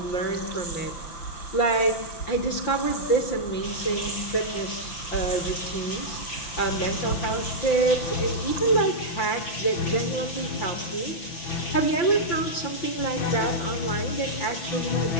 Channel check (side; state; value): right; late; 5.9 ms